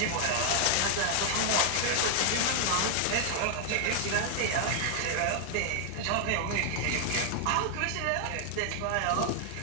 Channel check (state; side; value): different; both; correlation 0.00